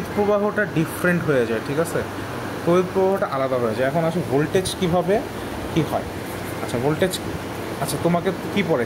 প্রবাহটা ডিফারেন্ট হয়ে যায়, ঠিক আছে, তড়িৎ প্রবাহটা আলাদা হয়ে যায়। এখন আসে ভোল্টেজ কীভাবে কী হয়। আচ্ছা, ভোল্টেজ, আচ্ছা তোমাকে কী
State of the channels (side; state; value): both; identical; correlation 1.00